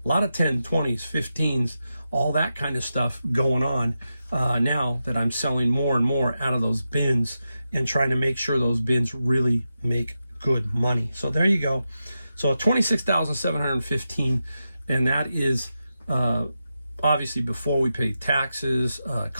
a lot of 10, 20s, 15s, all that kind of stuff going on now that I'm selling more and more out of those bins and trying to make sure those bins really make good money. So there you go. So $26,715, and that is obviously before we pay taxes,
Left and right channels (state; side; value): inverted; both; correlation -0.89